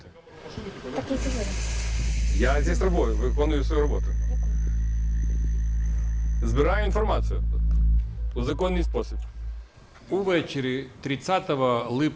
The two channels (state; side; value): identical; both; correlation 1.00